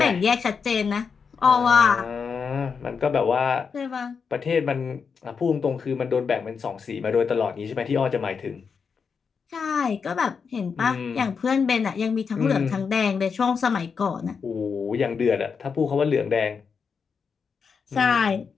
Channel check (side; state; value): right; quieter; 5.8 dB